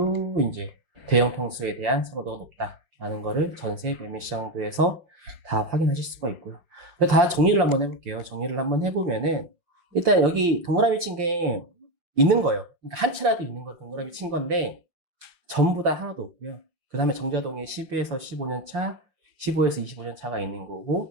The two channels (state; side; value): late; left; 5.7 ms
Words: 이제 대형 평수에 대한 선호도가 높다라는 거를 전세 매매 시장도에서 다 확인하실 수가 있고요. 다 정리를 한번 해볼게요. 정리를 한번 해보면은 일단 여기 동그라미 친 게 있는 거예요. 그러니까 한 채라도 있는 거 동그라미 친 건데 전부 다 하나도 없고요. 그 다음에 정자동에 10에서 15년 차, 15에서 25년 차가 있는